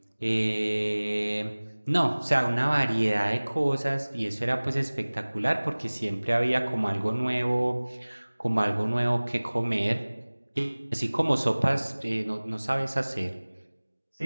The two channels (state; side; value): inverted; both; correlation -1.00